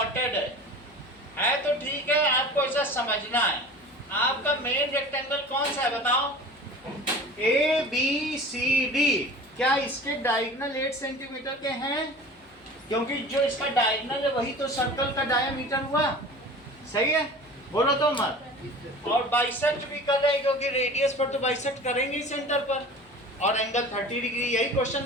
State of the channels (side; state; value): left; noise; hum, 30 dB below the sound